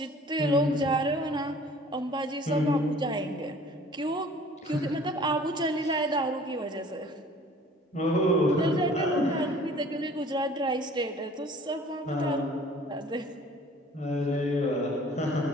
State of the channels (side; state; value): both; normal; correlation 0.50